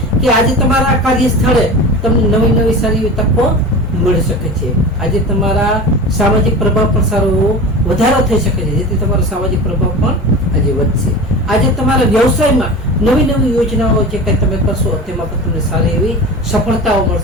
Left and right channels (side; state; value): both; normal; correlation 0.32